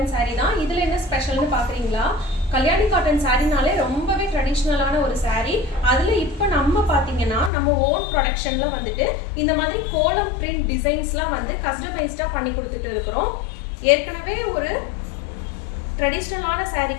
சாரீ தான். இதுல என்ன ஸ்பெஷல்னு பாக்குறீங்களா? கல்யாணி காட்டன் சாரீனாலே ரொம்பவே ட்ரெடிஷ்னலான ஒரு சாரீ. அதுல இப்போ நம்ம பாத்தீங்கன்னா நம்ம ஓன் ப்ரொடக்ஷன்ல வந்துட்டு இந்த மாதிரி கோலம் பிரிண்ட் டிசைன்ஸ்லாம் வந்து கஸ்டமைஸ்டா பண்ணி கொடுத்துட்டு இருக்கிறோம். ஏற்கனவே ஒரு ட்ரெடிஷ்னலான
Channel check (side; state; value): right; drops out; at 7.5 s